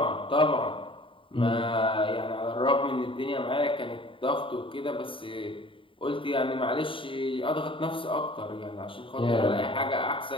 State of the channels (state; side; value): late; right; 0.25 ms